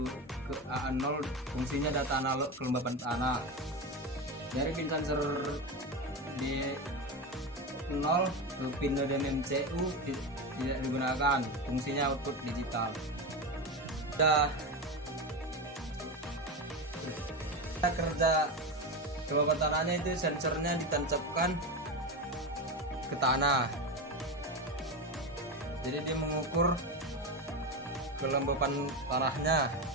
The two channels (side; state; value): both; normal; correlation 0.18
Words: ke A0, fungsinya data analog kelembapan tanah. Dari pin sensor D0 ke pin NODEM MCU tidak digunakan, fungsinya output digital. Kerja kelembapan tanahnya itu sensornya ditancapkan ke tanah, jadi dia mengukur kelembapan tanahnya.